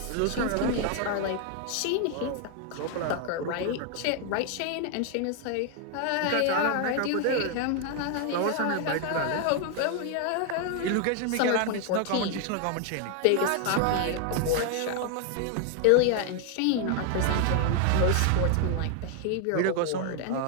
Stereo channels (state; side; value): different; both; correlation 0.00